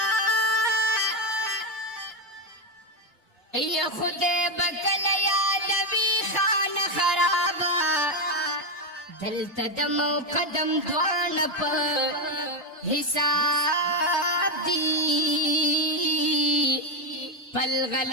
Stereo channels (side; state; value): both; normal; correlation 0.08